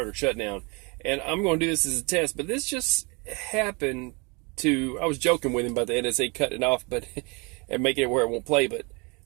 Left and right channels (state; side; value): quieter; left; 29.6 dB